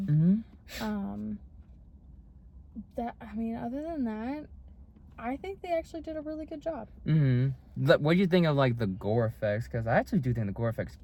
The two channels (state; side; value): identical; both; correlation 1.00